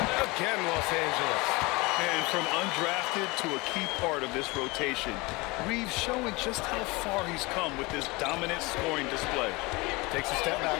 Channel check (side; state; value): right; quieter; 24.3 dB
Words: Again, Los Angeles. And from undrafted to a key part of this rotation, Reeves showing just how far he's come with this dominant scoring display. Takes a step back.